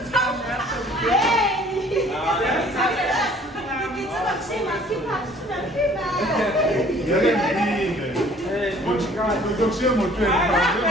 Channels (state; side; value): normal; both; correlation 0.54